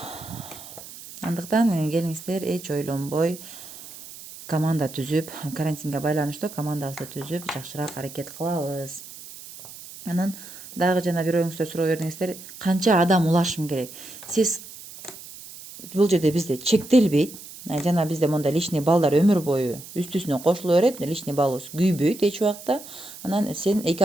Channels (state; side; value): noise; right; hiss, 15 dB below the sound